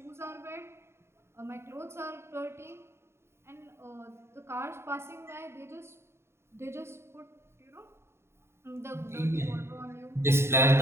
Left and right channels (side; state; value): left; late; 0.12 ms